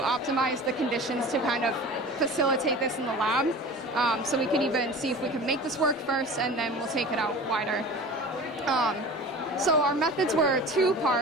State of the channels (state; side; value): normal; both; correlation 0.37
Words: the conditions to kind of facilitate this in the lab. So we could even see if we could make this work first, and then we'll take it out wider. So our methods were